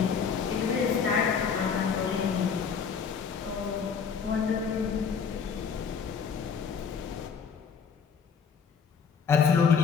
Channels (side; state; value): right; quieter; 6.3 dB